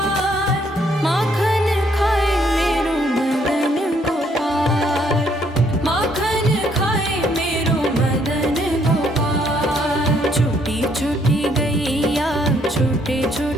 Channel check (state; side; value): normal; both; correlation 0.68